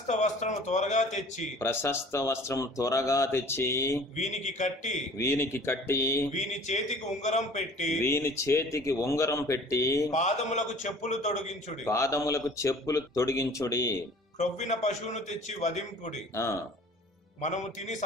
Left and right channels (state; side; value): normal; both; correlation 0.48